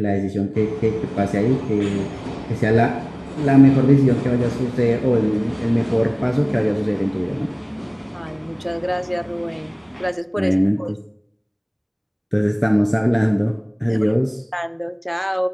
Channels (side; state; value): both; identical; correlation 1.00